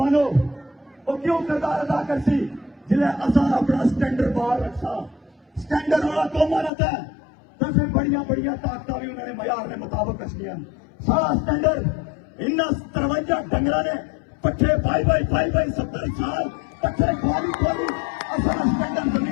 वो क्यों किरदार अदा करती जिन्हें असा अपना स्टैंडर्ड बाहर रखा स्टैंडर्ड वाला कौन मानता है तो फिर बढ़िया ताकत भी उन्होंने मयार ने मुताबिक रखिया सारा स्टैंडर्ड इन 53 डंगर ने पट्ठे भाई 70 साल पट्ठे खोली असा स्टैंडर्ड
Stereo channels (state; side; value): drops out; right; at 6.7 s